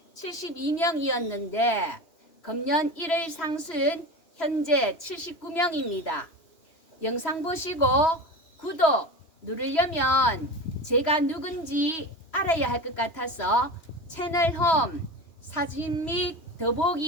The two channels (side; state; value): right; late; 3.1 ms